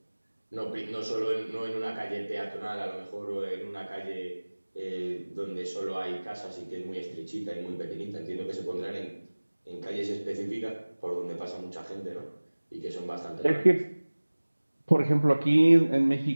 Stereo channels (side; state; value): both; inverted; correlation -1.00